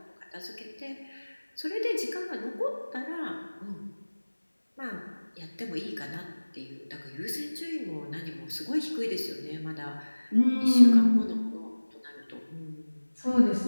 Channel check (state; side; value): inverted; both; correlation -1.00